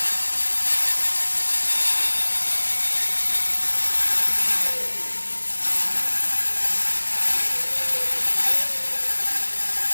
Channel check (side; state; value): both; inverted; correlation -1.00